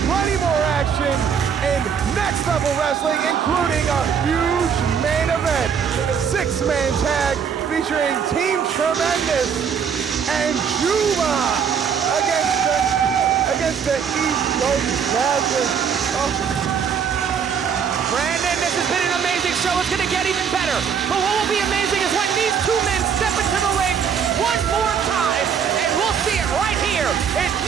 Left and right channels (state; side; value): quieter; left; 7.2 dB